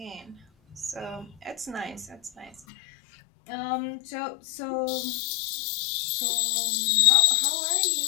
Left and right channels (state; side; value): drops out; right; at 2.6 s